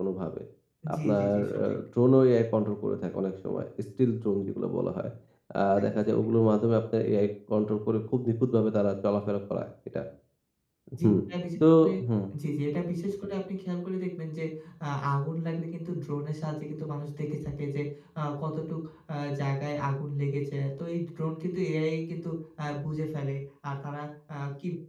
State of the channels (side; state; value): both; identical; correlation 1.00